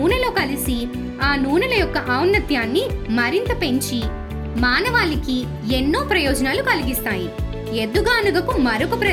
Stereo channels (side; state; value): both; identical; correlation 1.00